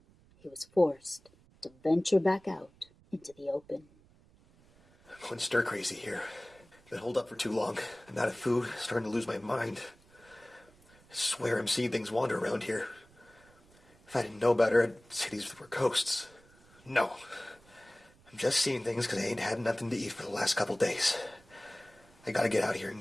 he was forced to venture back out into the open. I'm going stir crazy here. Been holed up for too long. I'm out of food, starting to lose my mind. I swear I'm seeing things wander around here. If I didn't know better, I'd say these were ghosts. No. I'm just seeing things because I ain't had nothing to eat for the last couple days. I gotta get out here and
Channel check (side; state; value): right; noise; rumble, 28 dB below the sound